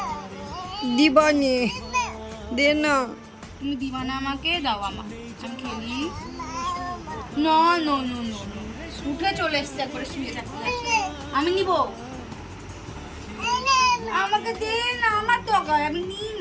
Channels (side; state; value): both; identical; correlation 1.00